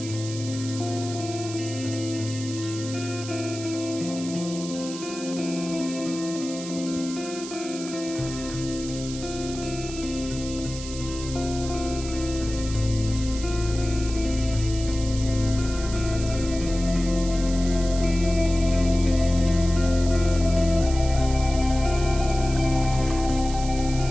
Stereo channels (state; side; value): noise; right; hiss, 11 dB below the sound